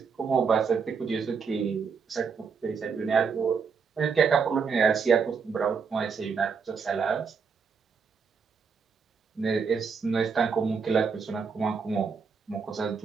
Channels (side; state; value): left; quieter; 5.7 dB